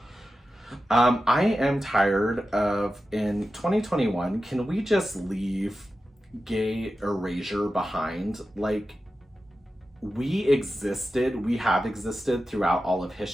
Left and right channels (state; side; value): normal; both; correlation 0.92